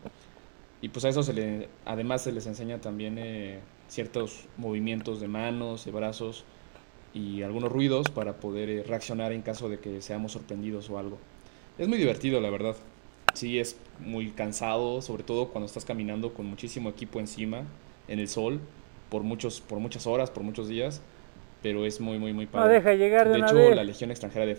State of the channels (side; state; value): left; silent; digital silence